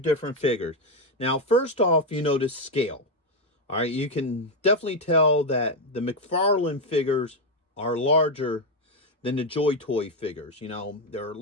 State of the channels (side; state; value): both; normal; correlation 0.06